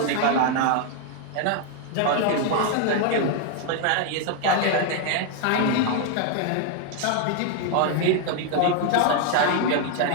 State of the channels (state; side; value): different; both; correlation 0.00